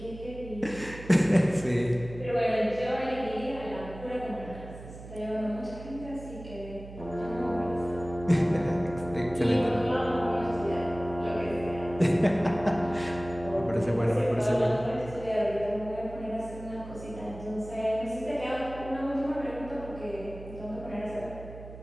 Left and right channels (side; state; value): right; noise; hum, 14 dB below the sound